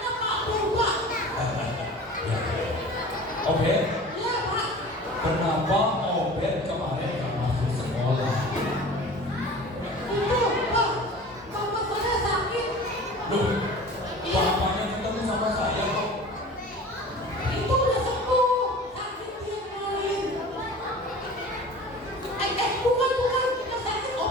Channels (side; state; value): both; normal; correlation 0.40